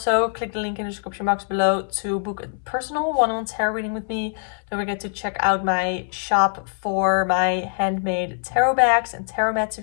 click the link in the description box below to book a personal one-on-one tarot reading with me. Don't forget to check out my shop for my handmade tarot bags and tarot mats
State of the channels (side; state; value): right; silent; 63 dB below the other